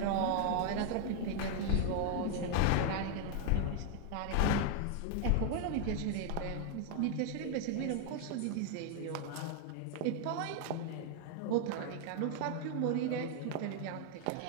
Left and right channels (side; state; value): both; different; correlation 0.00